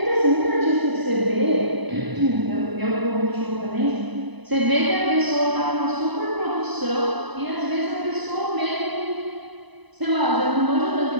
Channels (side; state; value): left; late; 1.0 ms